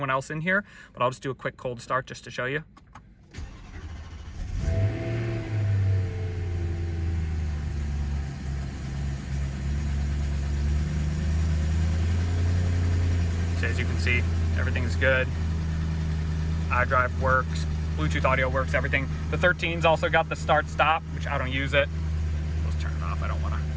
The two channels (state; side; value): identical; both; correlation 1.00